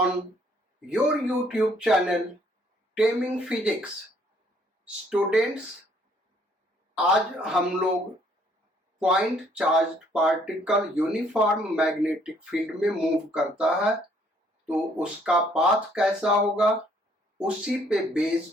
your YouTube channel Taming Physics. Students, आज हम लोग point charged particle uniform magnetic field में मूव करता है तो उसका पाथ कैसा होगा उसी पे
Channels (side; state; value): both; normal; correlation 0.64